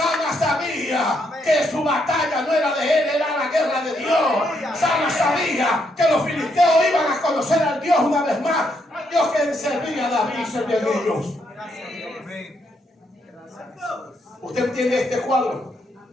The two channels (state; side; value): normal; both; correlation 0.76